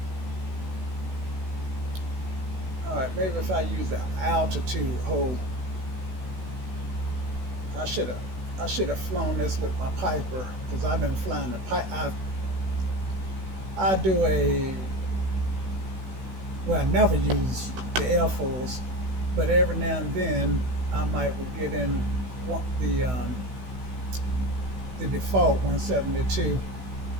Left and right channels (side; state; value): left; late; 16 ms